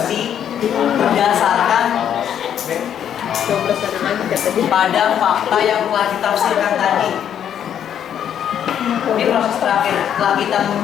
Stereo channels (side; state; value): right; quieter; 9.4 dB